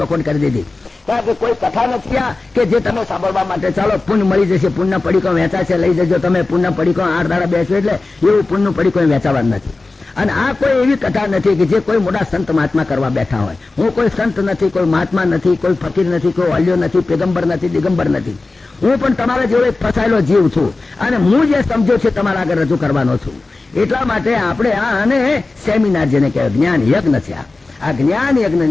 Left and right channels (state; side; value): quieter; right; 3.4 dB